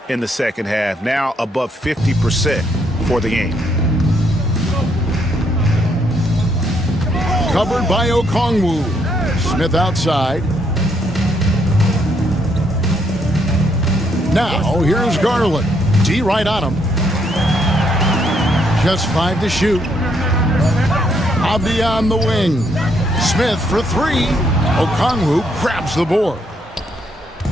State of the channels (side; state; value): both; normal; correlation 0.73